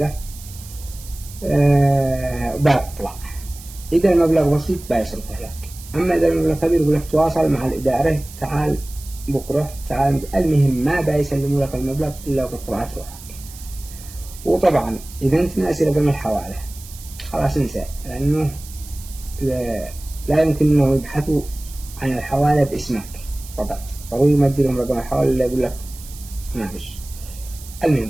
بطلع. إذا المبلغ بسيط بيصرفه لك، أما إذا المبلغ كبير يقول لك تواصل مع الإدارة، تعال بكرة، تعال. المهم ما بيسلموا لك المبلغ إلا وقد طلعت روحك. وطبعا إذا أنت ناسي رقم الحوالة خلاص انسى، لأنه لا يمكن أنه يبحثوا عن الحوالة باسمك فقط، ضروري يمدي لهم رقم الحوالة اللي يقول لك ما فيش.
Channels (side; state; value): right; noise; hiss, 17 dB below the sound